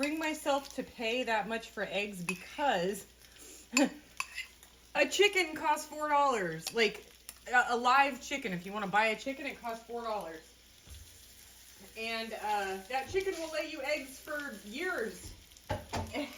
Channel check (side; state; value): both; identical; correlation 1.00